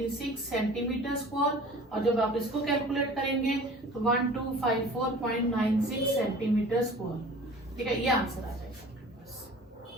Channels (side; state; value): both; normal; correlation 0.44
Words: सेंटीमीटर स्क्वायर, और जब आप इसको कैलकुलेट करेंगे तो 1254.96 सेंटीमीटर स्क्वायर। ठीक है, ये आंसर आ जाएगा आपके पास।